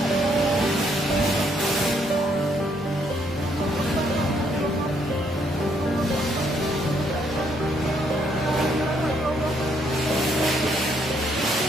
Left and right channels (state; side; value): normal; both; correlation 0.71